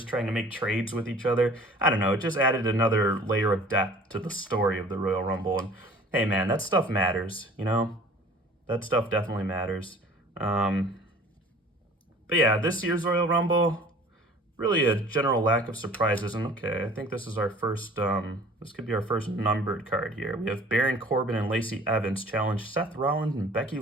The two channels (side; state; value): both; normal; correlation 0.48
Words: trying to make trades with each other. I don't know. It just added another layer of depth to the story of the Royal Rumble. And hey, man, that stuff matters. That stuff definitely matters. But yeah, this year's Royal Rumble, really a general lack of surprises. And okay, I think this is our first, this could be our first numbered card here. We have Baron Corbin and Lacey Evans challenge Seth Rollins and Becky